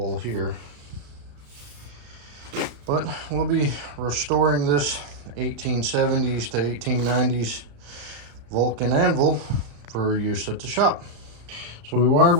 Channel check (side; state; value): left; late; 35 ms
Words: here. But we'll be restoring this 1870s to 1890s Vulcan anvil for use at the shop. So we wire